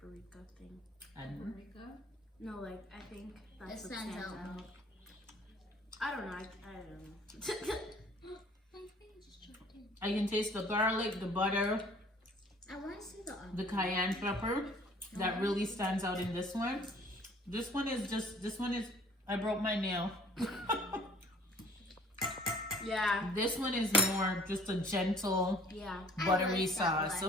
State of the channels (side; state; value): both; normal; correlation 0.54